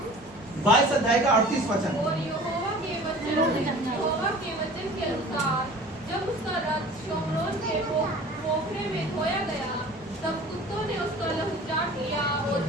22 अध्याय का 38 वचन। और यहोवा के वचन के अनुसार जब उसका रथ शोमरोन के पोखरे में धोया गया, तब कुत्तों ने उसका लहू चाट लिया, और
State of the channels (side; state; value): both; normal; correlation 0.43